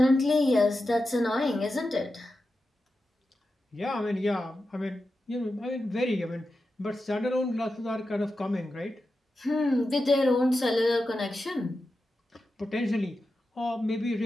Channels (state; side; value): normal; both; correlation 0.91